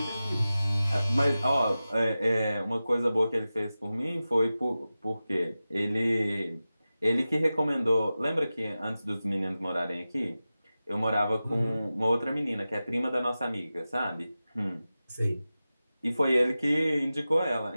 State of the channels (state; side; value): inverted; both; correlation -0.94